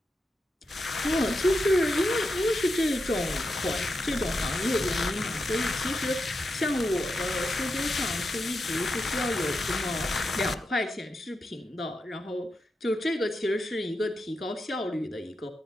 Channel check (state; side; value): normal; both; correlation 0.87